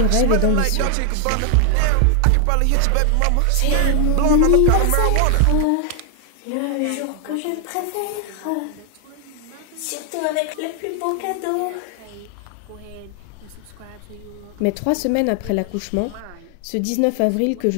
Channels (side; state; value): both; different; correlation 0.00